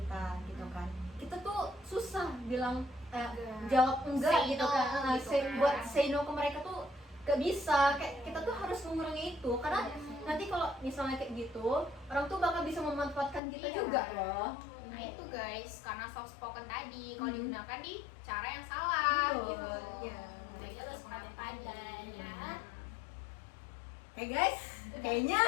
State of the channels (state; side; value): drops out; right; at 13.4 s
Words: gitu kan, kita tuh susah bilang jawab enggak Say gitu no, kan. gitu kan. Buat say no ke mereka tuh gak bisa, kayak kita tuh harus mengurangi itu karena nanti kalau misalnya kayak gitu orang tuh bakal bisa memanfaatkan kita Iya. juga loh. Nah itu guys, karena soft spoken tadi kalau digunakan di cara yang salah Betul, gitu. iya. Jadi Jadi harus pandai-pandai ya. Oke guys, kayaknya